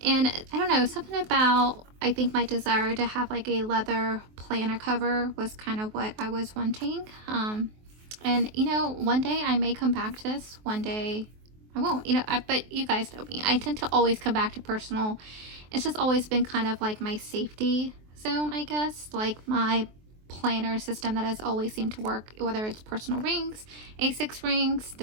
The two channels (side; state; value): left; late; 23 ms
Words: And I don't know, something about, I think my desire to have like a leather planner cover was kind of what I was wanting. And one day I may come back to this, one day I won't, but you guys know me. I tend to always come back to personal. It's just always been kind of like my safety zone, I guess, like my planner system that has always seemed to work, whether it's personal rings, A6 rings.